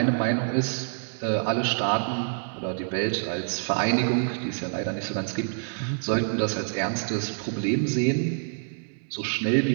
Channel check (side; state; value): left; silent; digital silence